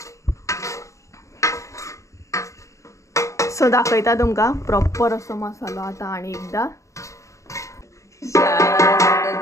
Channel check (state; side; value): late; right; 0.15 ms